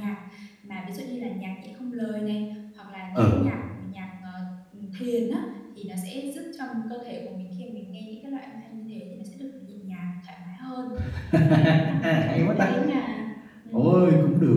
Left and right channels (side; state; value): both; identical; correlation 1.00